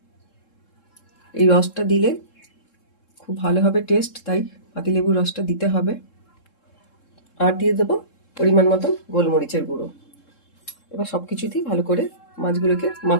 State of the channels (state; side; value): late; right; 3.7 ms